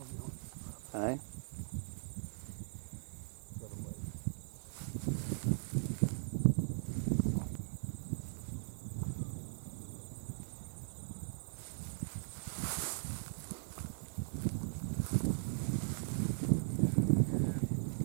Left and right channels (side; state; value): left; silent; digital silence